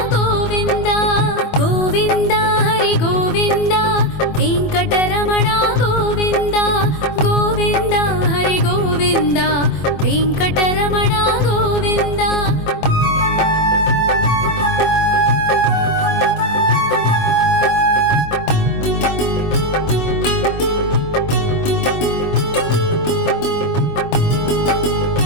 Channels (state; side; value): late; right; 24 ms